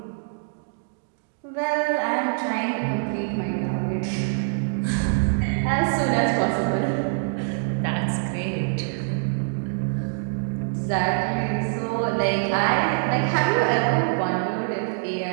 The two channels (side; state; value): left; silent; digital silence